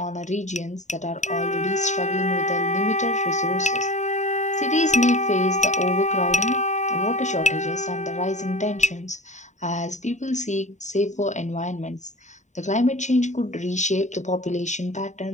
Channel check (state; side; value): late; right; 0.34 ms